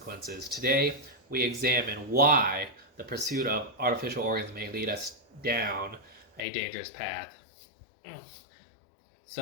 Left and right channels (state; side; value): drops out; right; at 6.5 s